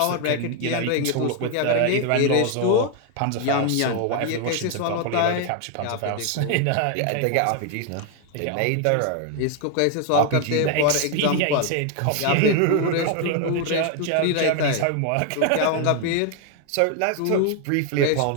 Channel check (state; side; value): different; both; correlation 0.01